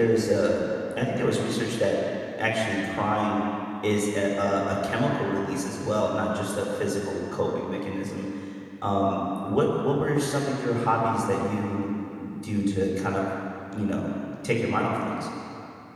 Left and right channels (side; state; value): both; identical; correlation 1.00